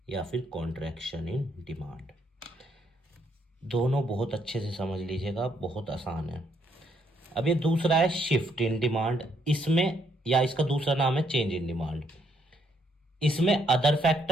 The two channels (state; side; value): normal; both; correlation 0.72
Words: या फिर कॉन्ट्रैक्शन इन डिमांड। दोनों बहुत अच्छे से समझ लीजिएगा, बहुत आसान है। अब ये दूसरा है शिफ्ट इन डिमांड, इसमें या इसका दूसरा नाम है चेंज इन डिमांड। इसमें अदर